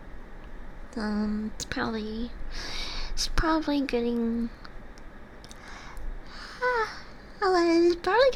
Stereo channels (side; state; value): both; identical; correlation 1.00